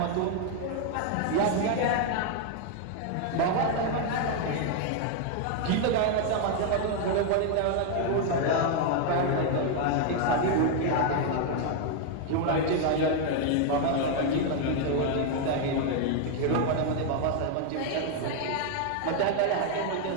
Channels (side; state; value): both; different; correlation 0.00